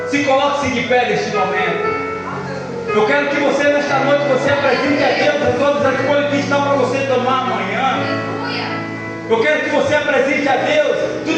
Se coloque-se de pé neste momento. Eu quero que você nesta noite, você apresente a Deus todas as escolhas que estão para você tomar amanhã. Eu quero que você apresente a Deus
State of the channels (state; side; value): identical; both; correlation 1.00